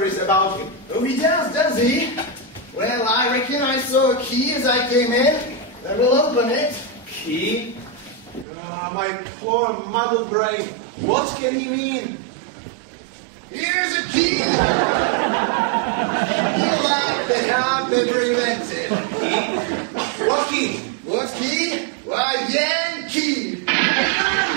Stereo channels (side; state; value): left; drops out; at 8.5 s